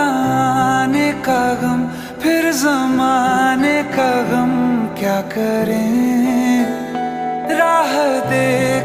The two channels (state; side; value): identical; both; correlation 1.00